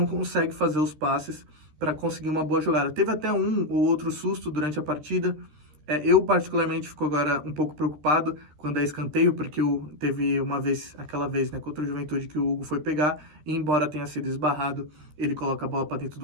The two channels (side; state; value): left; late; 13 ms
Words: consegue fazer os passes para conseguir uma boa jogada. Teve até um ou outro susto durante a partida. Eu, particularmente, fico agora um pouco preocupado quando é escanteio, porque teve aquela vez, né, contra o Juventude, que o Hugo foi pegar, e embora tenha sido esbarrado, ele coloca a bola para dentro